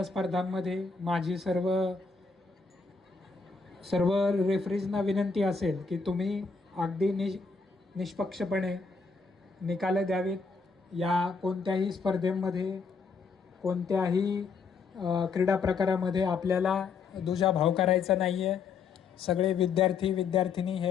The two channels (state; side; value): quieter; right; 4.9 dB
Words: स्पर्धांमध्ये माझी सर्व रेफरीजना विनंती असेल की तुम्ही अगदी निष्पक्षपणे निकाल द्यावेत. या कोणत्याही स्पर्धेमध्ये, कोणत्याही क्रीडा प्रकारामध्ये आपल्याला दुजाभाव करायचा नाही आहे. सगळे विद्यार्थी विद्यार्थिनी